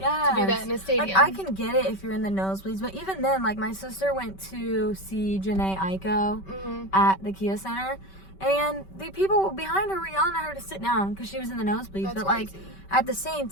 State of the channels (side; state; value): right; late; 5.2 ms